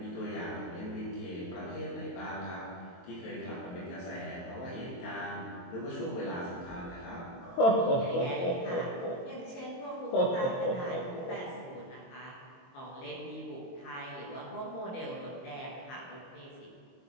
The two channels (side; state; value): right; late; 22 ms